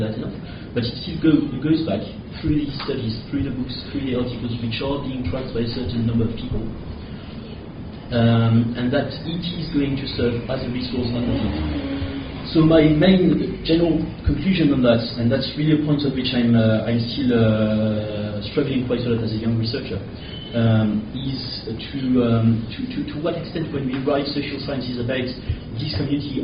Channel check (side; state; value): both; identical; correlation 1.00